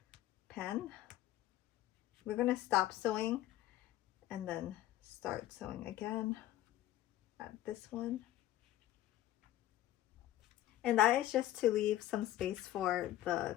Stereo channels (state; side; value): quieter; right; 14.0 dB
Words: pen. We're going to stop sewing and then start sewing again at this one. And that is just to leave some space for the